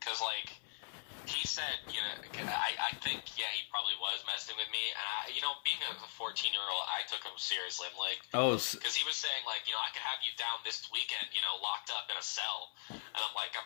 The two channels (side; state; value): right; silent; 51 dB below the other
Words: like he said, I think he probably was messing with me, and being a 14-year-old, I took him seriously. I'm like, because he was saying like, I could have you down this weekend, locked up in a cell, and I'm like,